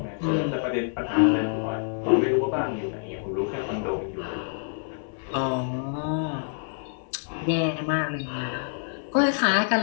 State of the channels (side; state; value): right; silent; 60 dB below the other